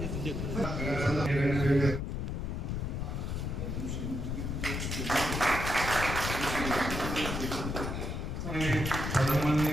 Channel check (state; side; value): noise; left; rumble, 3 dB below the sound